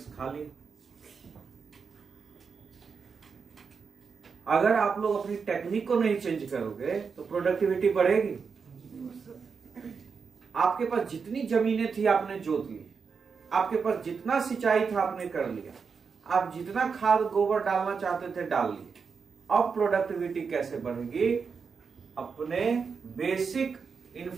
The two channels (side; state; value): left; quieter; 5.6 dB